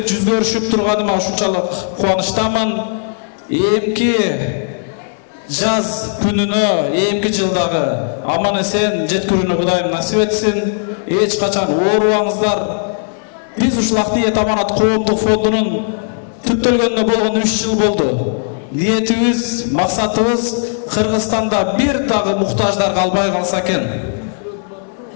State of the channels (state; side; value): silent; right; digital silence